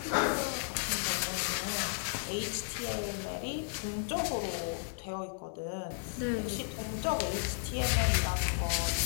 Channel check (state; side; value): silent; right; digital silence